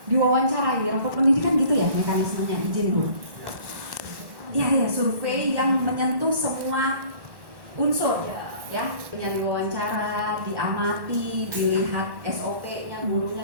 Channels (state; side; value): late; left; 1.1 ms